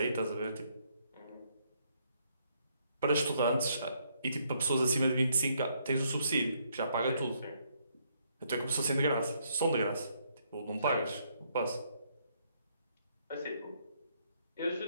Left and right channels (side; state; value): both; inverted; correlation -0.71